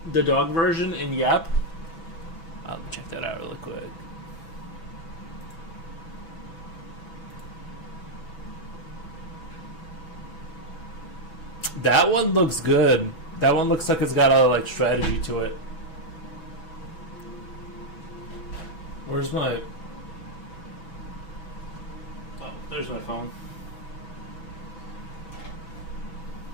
the dog version in Yep. I'll check that out really quick. That one looks good. That one looks like it's got a like strategy to it. Where's my... Oh, there's my phone.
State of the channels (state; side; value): late; right; 6.1 ms